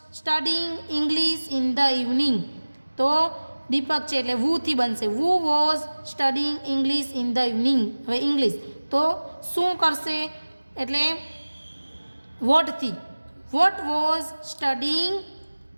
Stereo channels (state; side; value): inverted; both; correlation -1.00